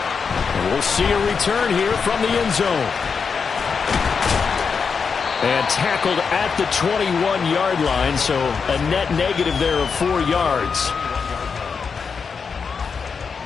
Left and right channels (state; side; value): quieter; right; 5.7 dB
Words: And we'll see a return here from the end zone. And tackled at the 21-yard line, so a net negative there of 4 yards.